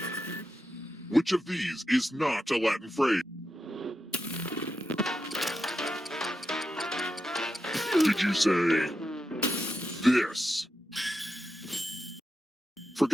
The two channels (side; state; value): both; normal; correlation 0.88